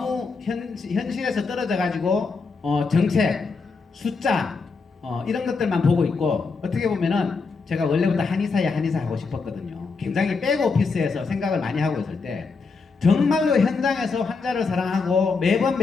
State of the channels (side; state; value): right; quieter; 4.6 dB